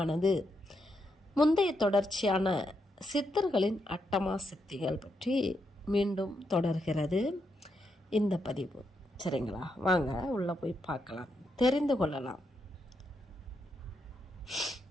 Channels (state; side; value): normal; both; correlation 0.81